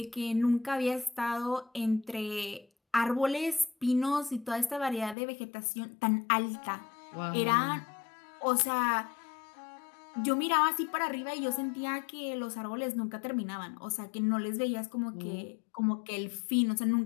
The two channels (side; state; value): right; drops out; at 5.2 s